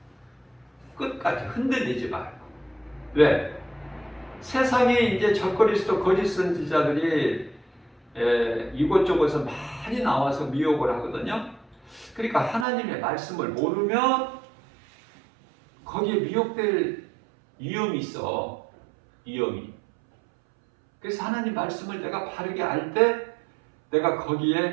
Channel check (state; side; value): drops out; left; at 12.7 s